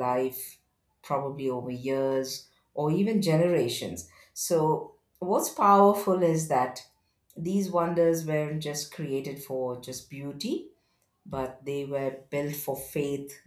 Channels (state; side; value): identical; both; correlation 1.00